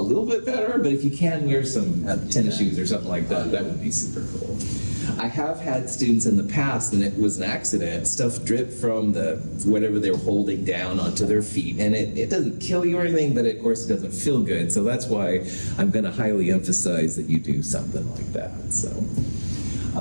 little bit better, but if you can wear some tennis shoes or something like that, that would be super cool. I have had students in the past, and it was an accident, stuff dripped from the whatever they were holding down onto their feet, and it doesn't kill you or anything, but of course it doesn't feel good, so that's why I'm going to highly emphasize that you do something like that. So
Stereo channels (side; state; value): both; inverted; correlation -1.00